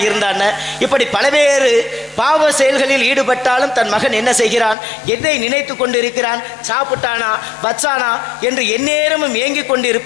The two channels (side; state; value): right; drops out; at 4.8 s